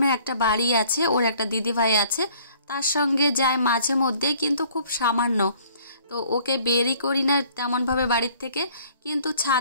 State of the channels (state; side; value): inverted; both; correlation -0.56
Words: একটা বাড়ি আছে, ওর একটা দিদিভাই আছে, তার সঙ্গে যায় মাঝে মধ্যে, কিন্তু খুব সামান্য। তো ওকে বেরই করি না তেমনভাবে বাড়ির থেকে, কিন্তু